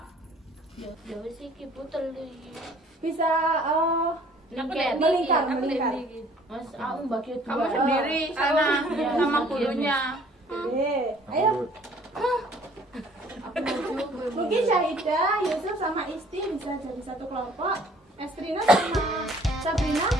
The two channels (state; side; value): normal; both; correlation 0.56